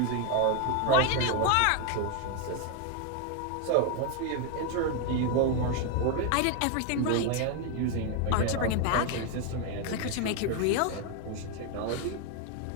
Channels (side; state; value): both; different; correlation 0.01